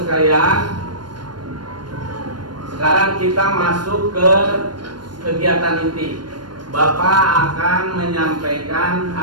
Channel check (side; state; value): left; late; 0.71 ms